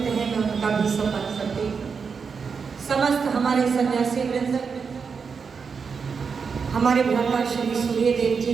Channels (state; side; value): quieter; left; 5.7 dB